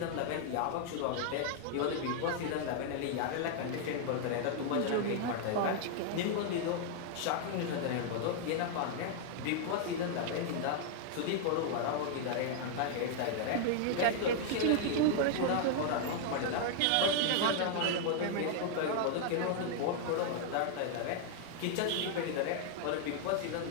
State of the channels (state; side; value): different; both; correlation 0.00